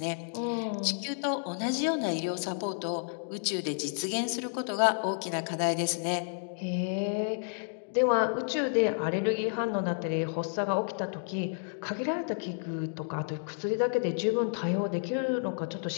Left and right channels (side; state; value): right; silent; digital silence